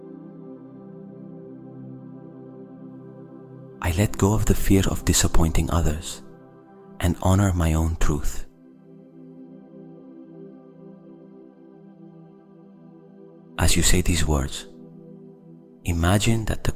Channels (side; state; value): both; identical; correlation 1.00